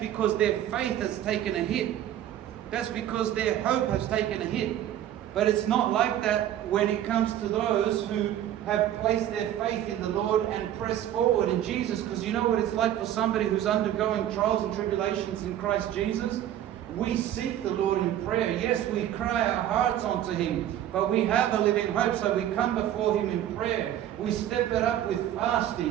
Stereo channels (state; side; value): quieter; left; 11.7 dB